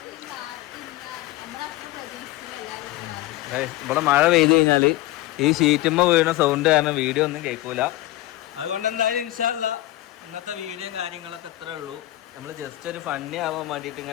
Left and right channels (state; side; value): quieter; right; 16.5 dB